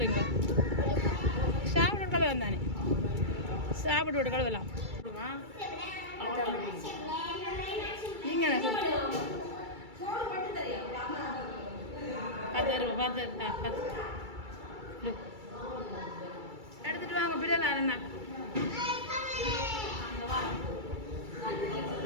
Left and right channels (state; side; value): late; left; 2.3 ms